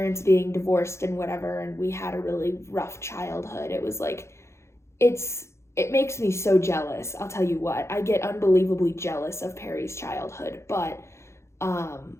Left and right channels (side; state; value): right; late; 0.13 ms